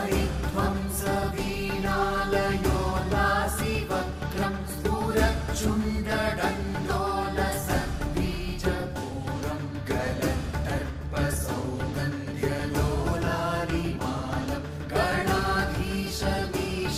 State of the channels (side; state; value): both; identical; correlation 1.00